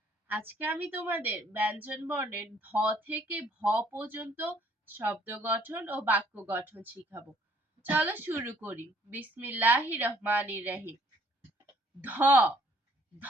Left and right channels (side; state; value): both; normal; correlation 0.63